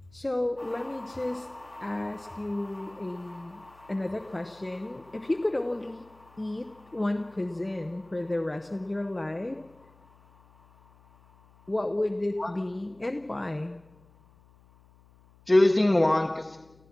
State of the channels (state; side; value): noise; left; hum, 27 dB below the sound